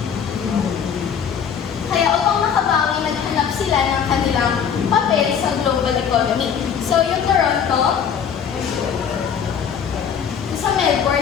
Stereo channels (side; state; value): right; quieter; 7.6 dB